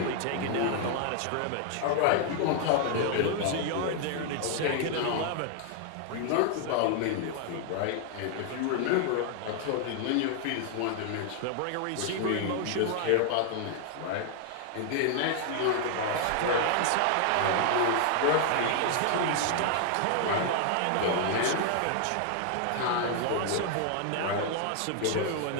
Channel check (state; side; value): different; both; correlation 0.00